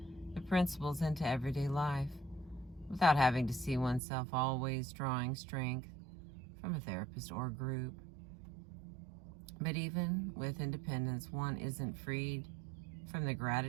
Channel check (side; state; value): left; drops out; at 4.0 s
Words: the principles into everyday life without having to see oneself always drawing strength from a therapist or group. But even with independence, one isn't freed from the